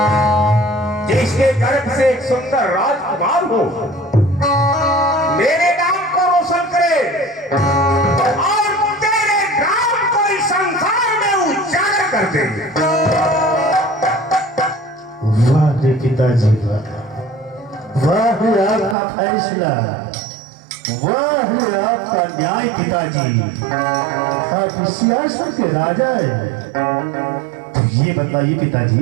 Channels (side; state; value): left; drops out; at 18.9 s